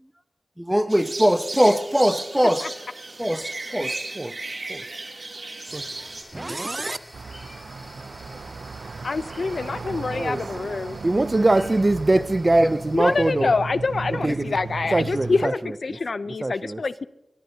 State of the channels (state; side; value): normal; both; correlation 0.97